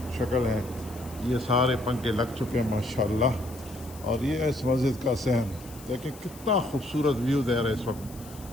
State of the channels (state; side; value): noise; left; hiss, 19 dB below the sound